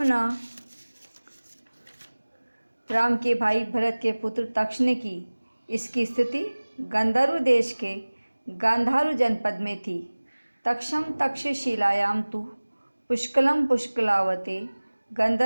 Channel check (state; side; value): inverted; both; correlation -1.00